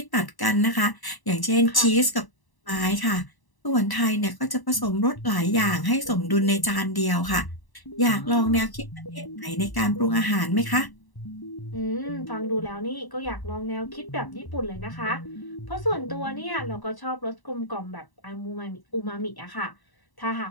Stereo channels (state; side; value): late; right; 1.0 ms